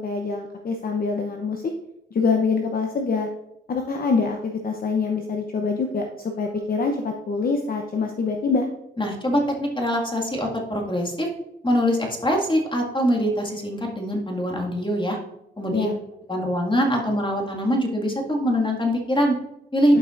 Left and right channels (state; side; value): normal; both; correlation 0.65